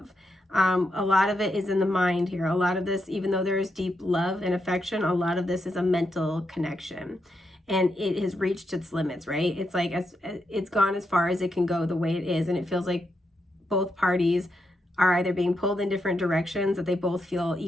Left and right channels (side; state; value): both; normal; correlation 0.83